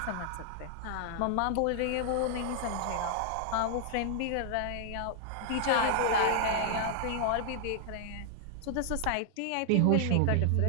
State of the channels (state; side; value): different; both; correlation 0.00